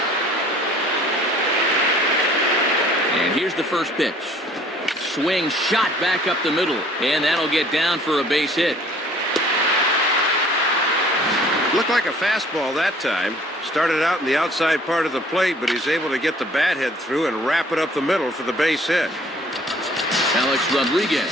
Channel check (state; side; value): normal; both; correlation 0.54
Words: And here's the first pitch. Swing shot back up the middle, and that'll get down for a base hit. Looked like a fastball that time. Started out in the outside part of the plate, but he's able to get the bat head through and wrap it up the middle for the base hit. Alex